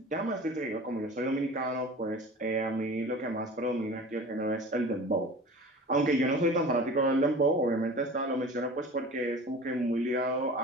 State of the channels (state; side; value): normal; both; correlation 0.39